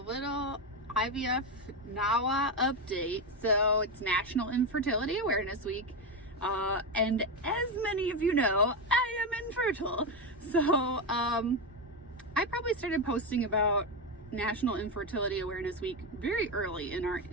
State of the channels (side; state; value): both; normal; correlation 0.11